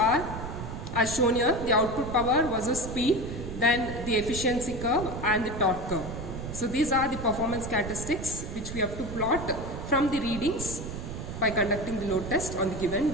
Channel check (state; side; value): noise; right; rumble, 7 dB below the sound